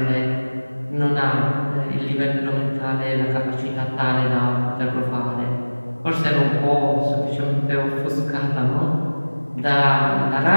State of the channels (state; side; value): inverted; both; correlation -1.00